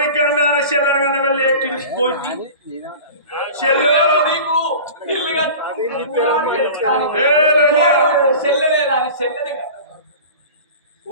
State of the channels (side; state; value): both; inverted; correlation -0.37